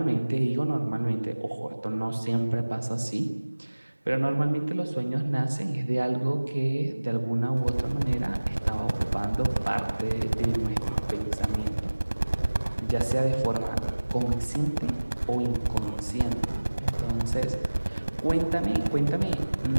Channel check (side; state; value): both; inverted; correlation -1.00